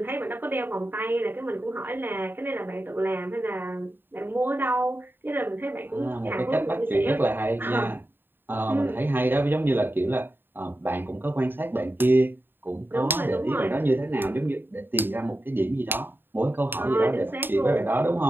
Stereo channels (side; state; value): left; late; 0.097 ms